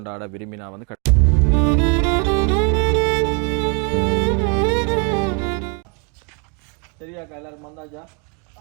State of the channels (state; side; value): quieter; left; 35.6 dB